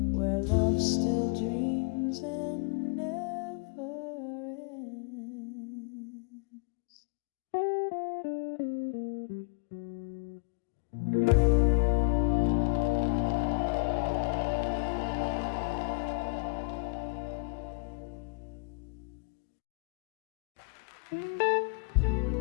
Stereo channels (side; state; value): right; quieter; 31.8 dB